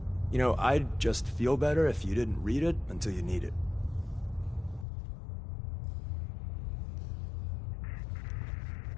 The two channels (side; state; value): right; drops out; at 4.9 s